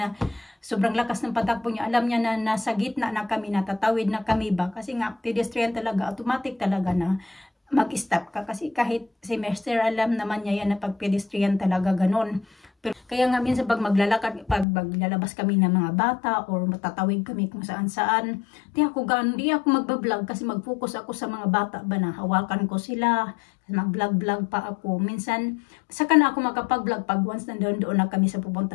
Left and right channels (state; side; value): drops out; right; at 14.7 s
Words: sobrang lakas ng patakbo niya. Alam niya na nasa gitna na kami, natatawid na kami ba. Kasi nga pedestrian talaga, automatic talaga na mag-stop ka. Kasi kahit semester, alam naman niya yan na pag pedestrian talaga ganun. Pero, kaya nga minsan pag maglalabas kami ng mga bata or matatawid kami kung saan-saan, di ako magbablog kasi mag-focus ako sa mga bata ba na hawakan ko sila, mag-vlog pa ako. Minsan, saka na ako makapag-vlog pag once doon na kami sa